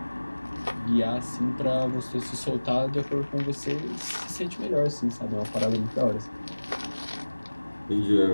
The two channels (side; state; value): both; inverted; correlation -1.00